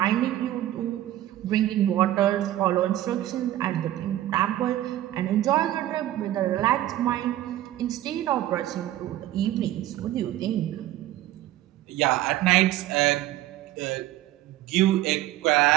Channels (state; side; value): quieter; left; 14.1 dB